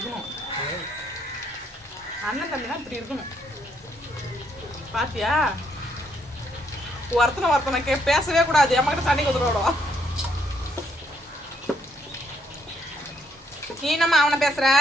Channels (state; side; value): normal; both; correlation 0.72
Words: அண்ணன் தம்பினா இப்படி இருக்கணும். பாத்தியா? ஒருத்தனை பேசவே கூடாது. அம்மாக்கிட்ட சண்டைக்கு வந்துடுவோம். நீ என்னம்மா அவனை பேசுற